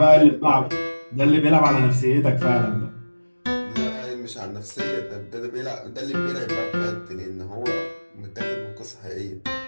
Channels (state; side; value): inverted; both; correlation -1.00